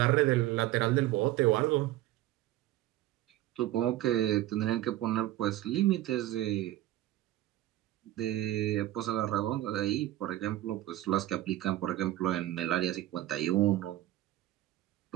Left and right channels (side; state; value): left; quieter; 14.9 dB